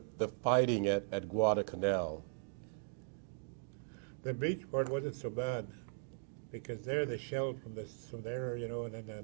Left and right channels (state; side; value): silent; left; digital silence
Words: fighting at Guadalcanal? The beach part wasn't so bad, because there they shelled from there, and